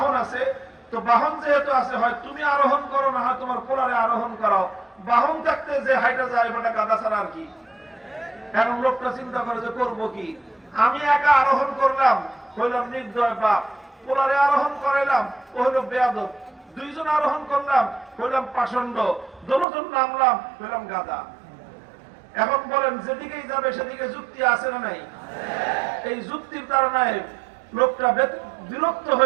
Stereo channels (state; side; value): drops out; left; at 19.7 s